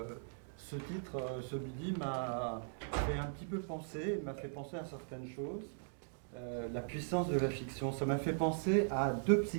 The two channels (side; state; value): left; silent; digital silence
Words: ce titre, celui-ci m'a fait un petit peu penser, m'a fait penser à certaines choses. La puissance de la fiction, ça m'a fait penser à deux